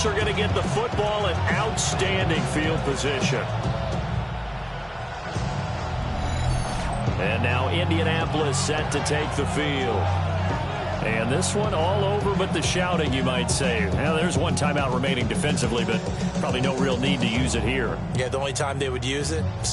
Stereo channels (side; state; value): both; identical; correlation 1.00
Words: are going to get the football in outstanding field position. And now Indianapolis set to take the field. And this one all over but the shouting, you might say. Now, there's 1 timeout remaining defensively, but probably no real need to use it here. Yeah, the only time they would use it,